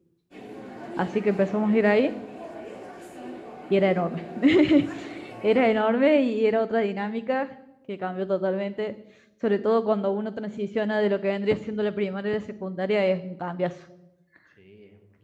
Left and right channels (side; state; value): both; identical; correlation 1.00